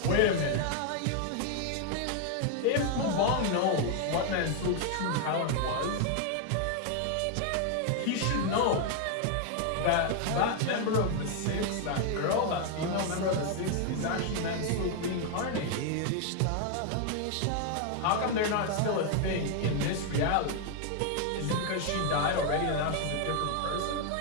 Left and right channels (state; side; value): different; both; correlation 0.00